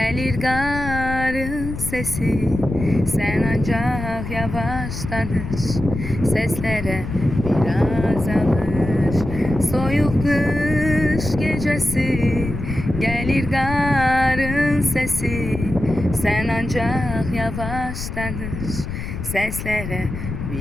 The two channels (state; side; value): noise; left; rumble, 7 dB below the sound